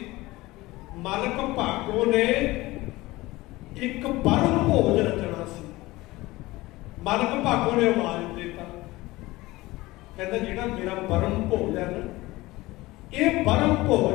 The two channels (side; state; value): right; quieter; 19.6 dB